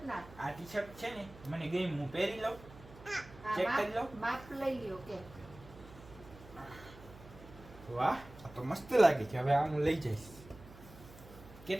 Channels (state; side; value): noise; right; hum, 19 dB below the sound